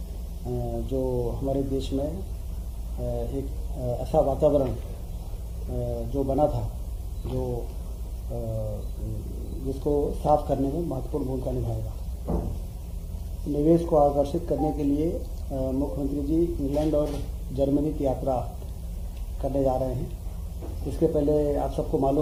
जो हमारे देश में एक ऐसा वातावरण जो बना था जिसको साफ करने में महत्वपूर्ण भूमिका निभाएगा। निवेश को आकर्षित करने के लिए मुख्यमंत्री जी इंग्लैंड और जर्मनी की यात्रा करने जा रहे हैं। इसके पहले आप सबको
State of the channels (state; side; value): identical; both; correlation 1.00